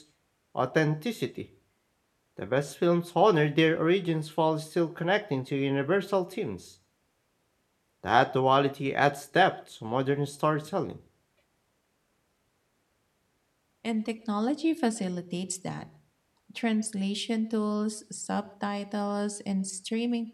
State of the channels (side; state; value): both; identical; correlation 1.00